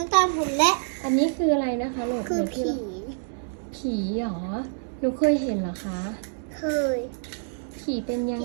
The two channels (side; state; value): left; silent; digital silence